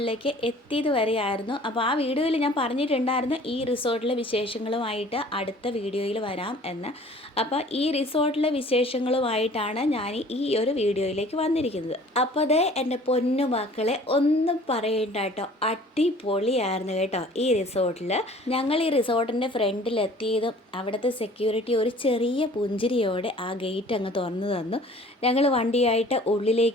എത്തിയത് വരെയായിരുന്നു. അപ്പോൾ ആ വീഡിയോയിൽ ഞാൻ പറഞ്ഞിട്ടുണ്ടായിരുന്നു ഈ റിസോർട്ടിലെ വിശേഷങ്ങളുമായിട്ട് അടുത്ത വീഡിയോയിൽ വരാം എന്ന്. അപ്പോൾ ഈ റിസോർട്ടിലെ വിശേഷങ്ങളുമായിട്ടാണ് ഞാൻ ഈ ഒരു വീഡിയോയിലേക്ക് വന്നിരിക്കുന്നത്. അപ്പോൾ അതേ എൻ്റെ പൊന്നു മക്കളെ ഒന്നും പറയണ്ട കേട്ടോ, അടിപൊളിയായിരുന്നു കേട്ടോ ഈ റിസോർട്ടിൽ. ഞങ്ങൾ ഈ റിസോർട്ടിൻ്റെ ഫ്രണ്ടിലെത്തിയതും അവിടുത്തെ സെക്യൂരിറ്റി ഒരു ചെറിയ പുഞ്ചിരിയോടെ ആ ഗേറ്റ് അങ്ങ് തുറന്നു തന്നു. ഞങ്ങൾ വണ്ടിയായിട്ട്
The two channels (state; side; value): normal; both; correlation 0.50